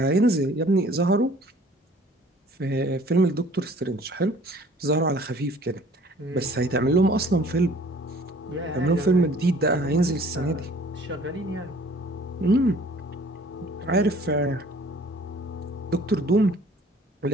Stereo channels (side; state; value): both; normal; correlation 0.53